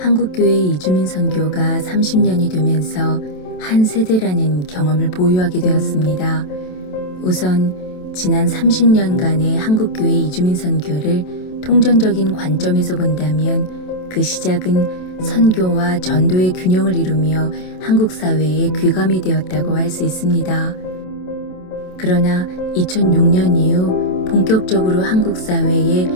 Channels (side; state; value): right; late; 27 ms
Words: 이주민 선교가 30년이 되면서 한 세대라는 경험을 보유하게 되었습니다. 우선 지난 30년간의 한국교회 이주민 선교를 통전적인 관점에서 본다면 그 시작은 선교와 전도의 균형을 이루며 한국 사회에 귀감이 되었다고 할 수 있습니다. 그러나 2006년 이후 본격적으로 한국 사회에